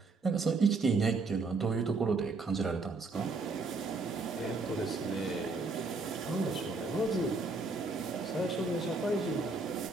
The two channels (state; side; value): quieter; left; 3.8 dB